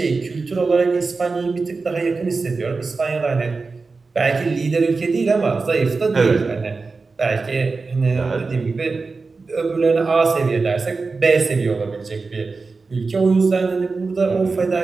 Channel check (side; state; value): left; quieter; 4.2 dB